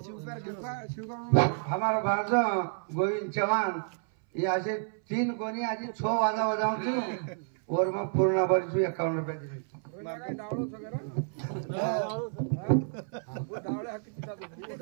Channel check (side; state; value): left; silent; 58 dB below the other